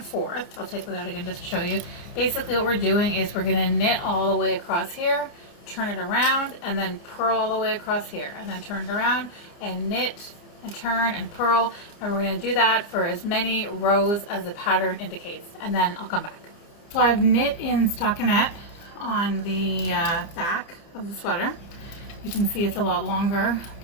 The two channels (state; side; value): late; right; 29 ms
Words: forth. I'll take that out again just to show you. Basically what we're doing is we're going to knit all the way across here, turn it around, and then purl all the way across here, and then turn it around and knit and turn and purl, and we're going to do that for as many rows as the pattern indicates, and then I'll come back. So I've knit in stockinette on the back of the sweater. You can see it's a lot longer